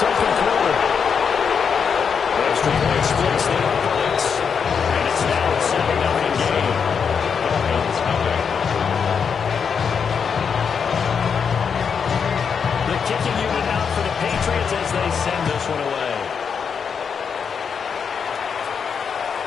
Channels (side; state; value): right; quieter; 6.5 dB